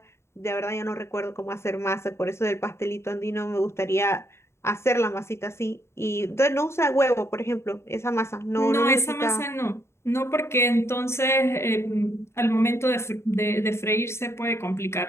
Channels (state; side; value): late; right; 0.13 ms